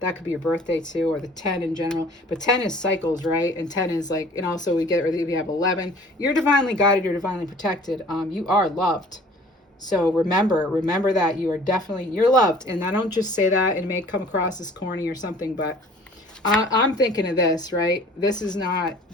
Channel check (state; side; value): normal; both; correlation 0.50